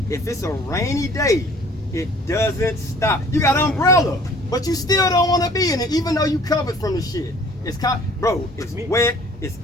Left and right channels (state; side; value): normal; both; correlation 0.52